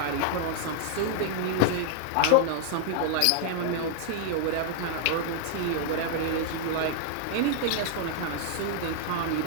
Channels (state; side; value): different; both; correlation -0.01